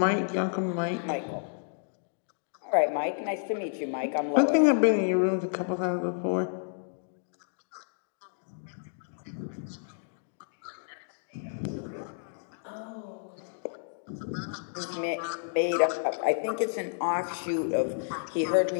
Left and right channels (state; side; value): silent; right; digital silence